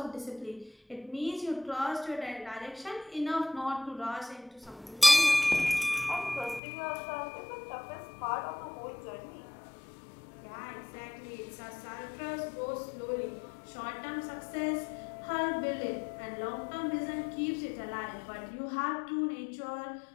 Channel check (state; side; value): drops out; right; at 6.6 s